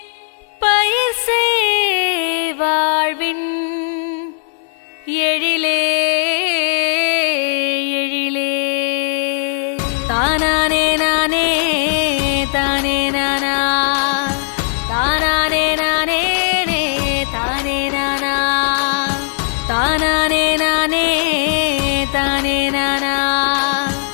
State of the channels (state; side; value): silent; right; 62 dB below the other